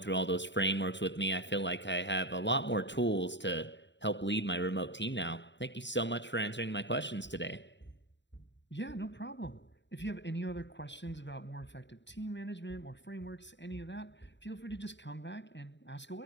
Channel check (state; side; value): late; right; 0.52 ms